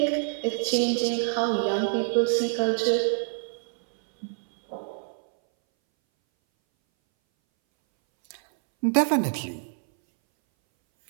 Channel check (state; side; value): silent; left; 60 dB below the other